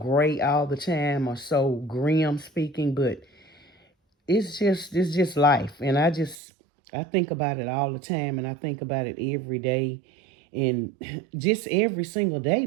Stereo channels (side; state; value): left; drops out; at 6.4 s